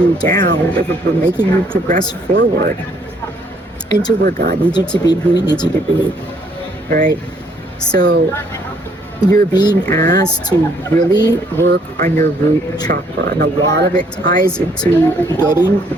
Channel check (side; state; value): both; normal; correlation 0.66